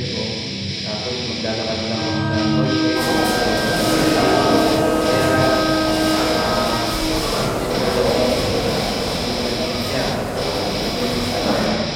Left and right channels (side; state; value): both; identical; correlation 1.00